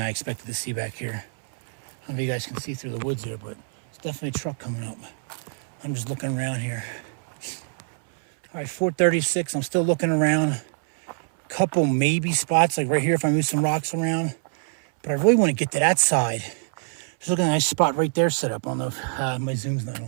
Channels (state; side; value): silent; left; 62 dB below the other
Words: I expected to see back here. I don't know if you guys can see through the woods here, but it's definitely a truck coming up. I'm just looking around here. All right, 4:36, I'm still looking around. Couple maybe spots, like right here if I move some rocks around. But I really want to get to that side. Just looking at a nice spot right there set up. I don't know if my zoom's not